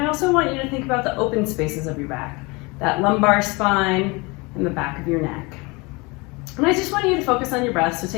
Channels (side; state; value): right; quieter; 26.3 dB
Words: also want you to think about the open spaces of your back, that lumbar spine and the back of your neck. And I just want you to focus on your breath, so